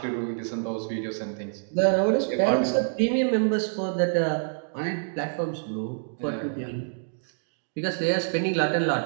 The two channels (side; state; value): left; silent; digital silence